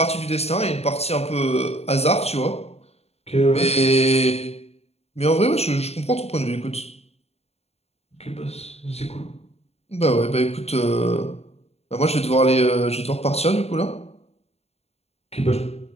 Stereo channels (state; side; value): late; right; 0.30 ms